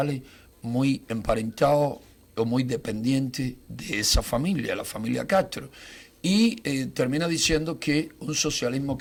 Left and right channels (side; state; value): both; identical; correlation 1.00